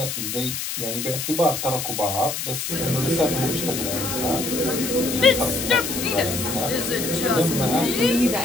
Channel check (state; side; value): noise; left; hiss, 4 dB below the sound